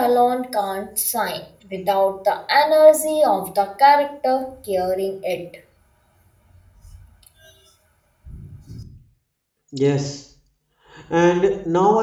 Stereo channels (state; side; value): identical; both; correlation 1.00